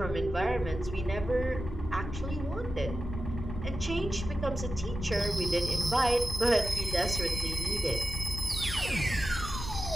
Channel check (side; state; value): left; noise; rumble, 7 dB below the sound